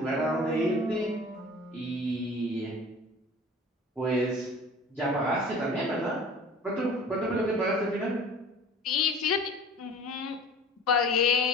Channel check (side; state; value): both; normal; correlation 0.43